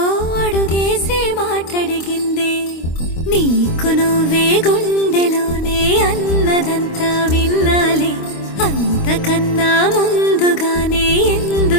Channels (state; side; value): late; right; 25 ms